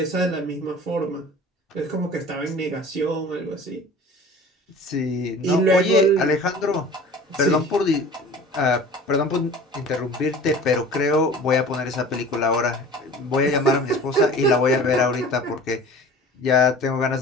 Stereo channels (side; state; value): both; normal; correlation 0.42